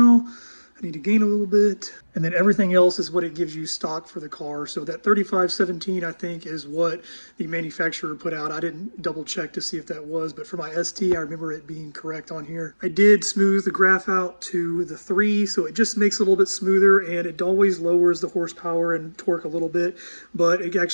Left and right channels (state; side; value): inverted; both; correlation -1.00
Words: I need to gain a little bit. And then everything else is what it gives you stock for the car. So that 3517, I think, is what the manufacturer put out. I didn't double check to see if that was, but for my ST, I remember it being correct on here. I did smooth the graph out to the 3, so it just makes it a little bit smoother, and it always lowers the horsepower and torque a little bit, but it